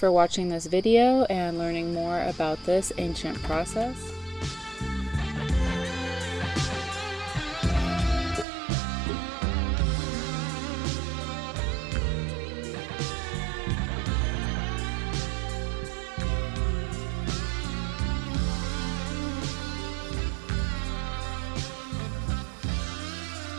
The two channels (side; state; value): left; drops out; at 8.5 s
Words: watching this video and learning more about this ancient process.